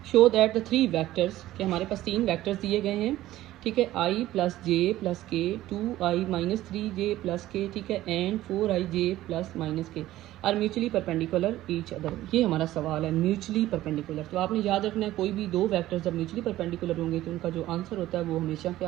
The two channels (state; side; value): quieter; left; 15.1 dB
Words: शो दैट द 3 वेक्टर्स कि हमारे पास 3 वेक्टर्स दिए गए हैं। ठीक है, i + j + k 2i - 3j + k। ठीक है, and 4ij + -k are mutually perpendicular each other. ये हमारा सवाल है म्यूचुअली परपेंडिकुलर। तो आपने याद रखना है कोई भी 2 वेक्टर्स जब म्यूचुअली परपेंडिकुलर होंगे तो उनका जो आंसर होता है वो हमेशा